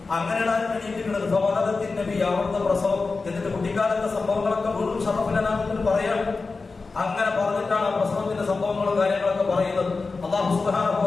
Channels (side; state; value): right; quieter; 4.1 dB